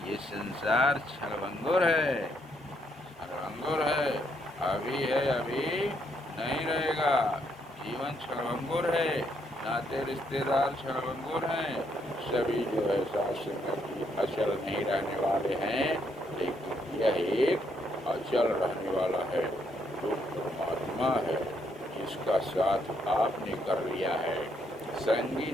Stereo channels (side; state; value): both; normal; correlation 0.74